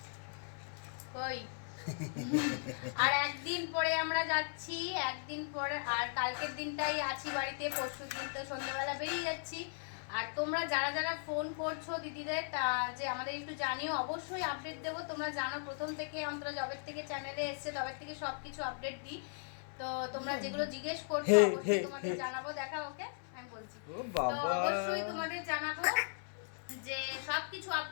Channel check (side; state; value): right; silent; 53 dB below the other